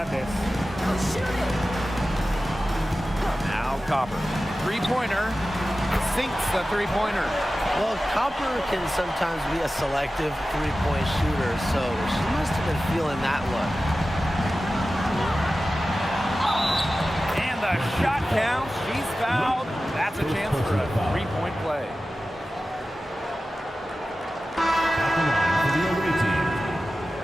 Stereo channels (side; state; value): both; normal; correlation 0.95